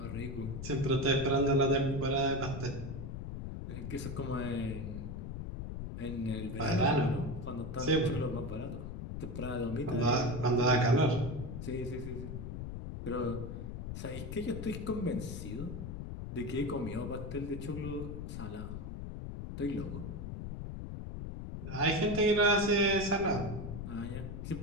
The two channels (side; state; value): left; noise; rumble, 6 dB below the sound